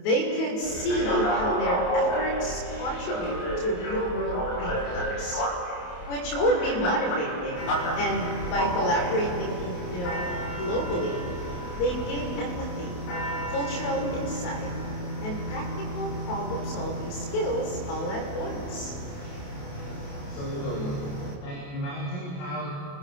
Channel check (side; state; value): right; late; 28 ms